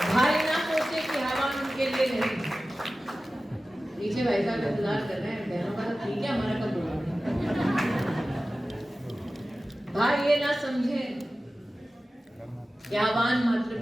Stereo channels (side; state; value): both; normal; correlation 0.96